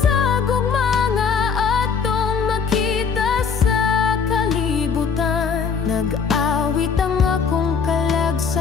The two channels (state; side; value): quieter; right; 5.9 dB